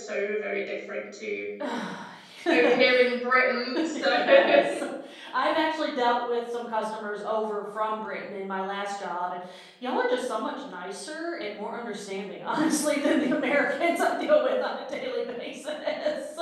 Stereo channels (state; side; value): identical; both; correlation 1.00